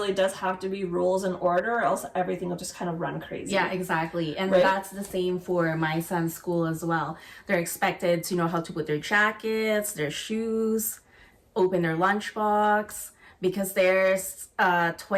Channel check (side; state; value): both; identical; correlation 1.00